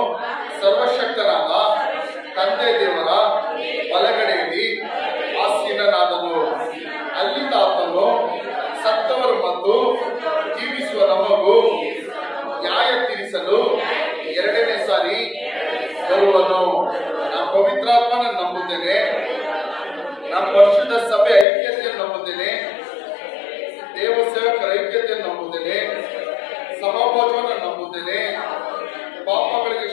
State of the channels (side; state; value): right; drops out; at 21.5 s